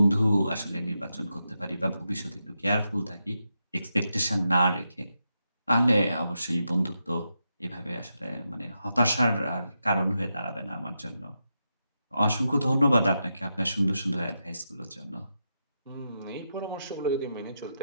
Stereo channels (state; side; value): inverted; both; correlation -0.86